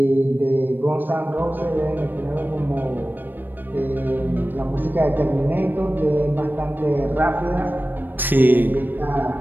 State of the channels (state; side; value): late; left; 0.092 ms